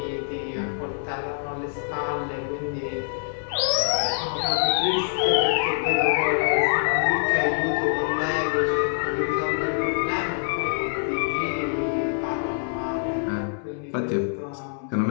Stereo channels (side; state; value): right; silent; 62 dB below the other